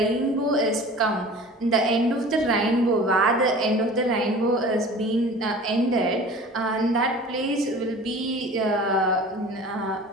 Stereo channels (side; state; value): both; normal; correlation 0.41